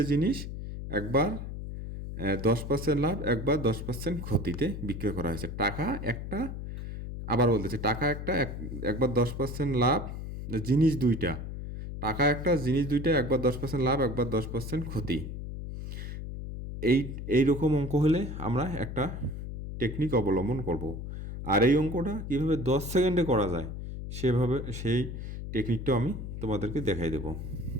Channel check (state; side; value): noise; left; hum, 7 dB below the sound